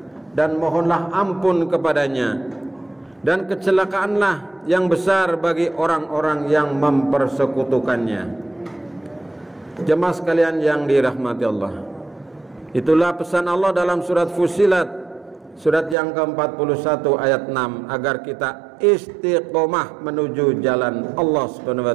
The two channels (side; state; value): left; drops out; at 16.0 s